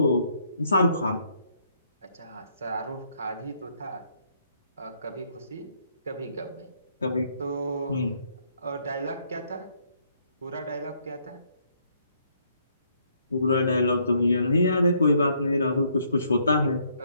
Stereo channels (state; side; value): inverted; both; correlation -0.70